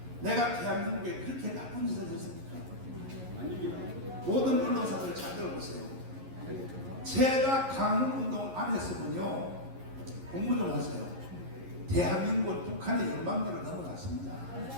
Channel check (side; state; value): left; late; 11 ms